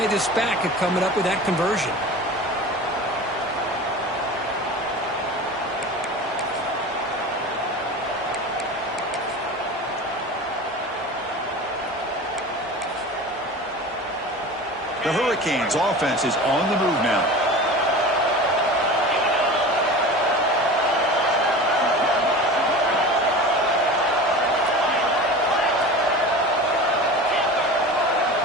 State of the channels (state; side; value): normal; both; correlation 0.34